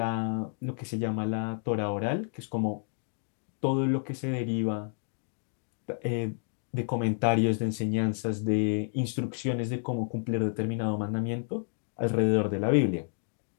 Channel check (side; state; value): right; silent; digital silence